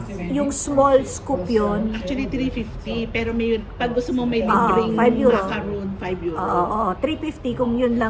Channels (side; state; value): both; identical; correlation 1.00